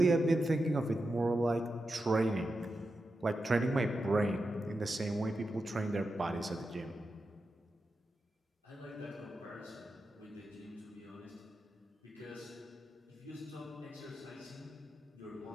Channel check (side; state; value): both; normal; correlation 0.89